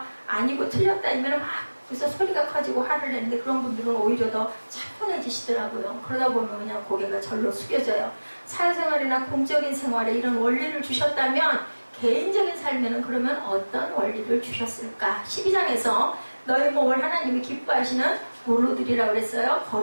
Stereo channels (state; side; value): inverted; both; correlation -1.00